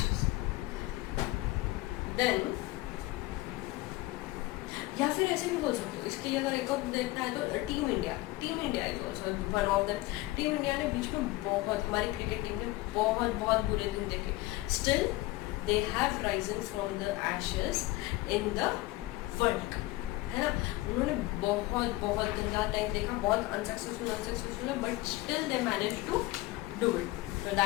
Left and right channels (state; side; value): quieter; right; 19.2 dB